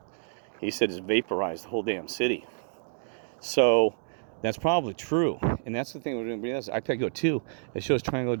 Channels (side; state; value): left; silent; digital silence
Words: He said it's vaporized the whole damn city. So that's probably true, and that's the thing we're doing. IPECO 2, it shows triangular